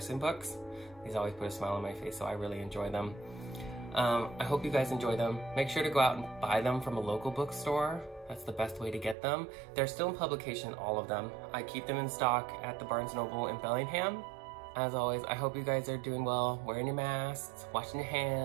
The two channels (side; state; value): left; drops out; at 9.2 s